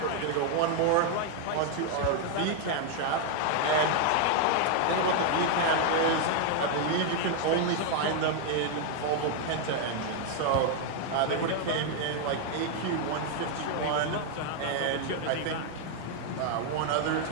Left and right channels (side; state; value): both; different; correlation 0.00